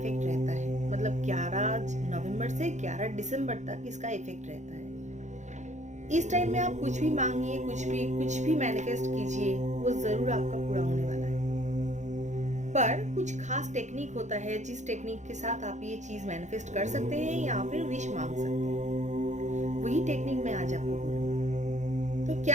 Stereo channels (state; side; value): late; left; 0.34 ms